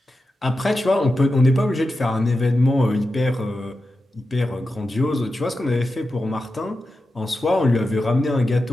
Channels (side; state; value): both; normal; correlation 0.91